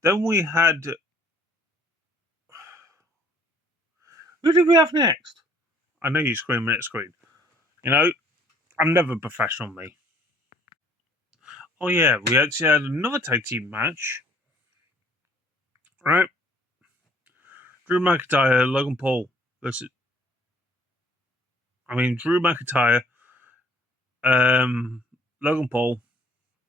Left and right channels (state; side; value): normal; both; correlation 0.59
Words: Then we had... Who did we have next? I know you're screaming at the screen. I'm never professional, me. Oh yeah, we actually had another tag team match, right? Drew McIntyre, Logan Paul versus. Drew McIntyre, Logan Paul